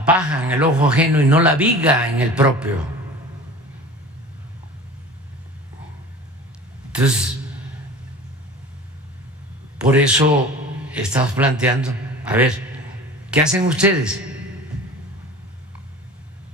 paja en el ojo ajeno y no la viga en el propio. Entonces, por eso estamos planteando, a ver, ¿qué hacen ustedes?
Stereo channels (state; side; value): normal; both; correlation 0.39